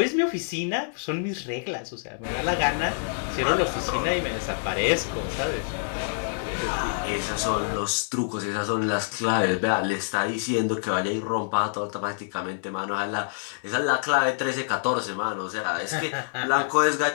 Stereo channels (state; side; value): silent; right; digital silence